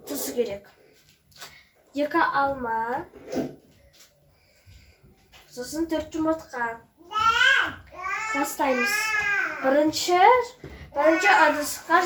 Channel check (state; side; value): identical; both; correlation 1.00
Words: tuz gerek. 2 alma, so'sin 4 yumurta. Başlayımız. Birinci adısqa